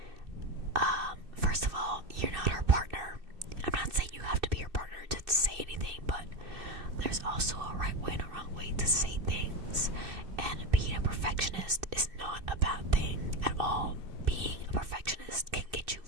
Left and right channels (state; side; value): late; left; 2.6 ms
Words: first of all, you're not her partner. I'm not saying you have to be her partner to say anything, but there's also a right way and a wrong way to say things. And being a perfectionist is not a bad thing at all. Being a perfectionist can get you